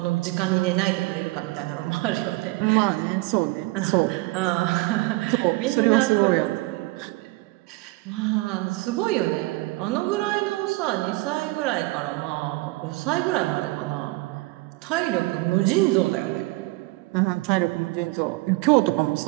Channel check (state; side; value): quieter; left; 22.2 dB